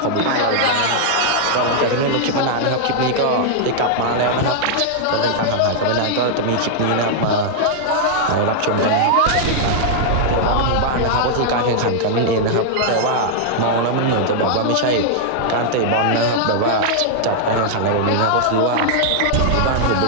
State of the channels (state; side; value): different; both; correlation -0.01